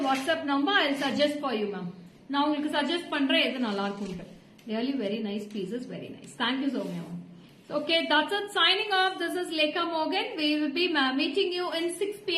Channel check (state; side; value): identical; both; correlation 1.00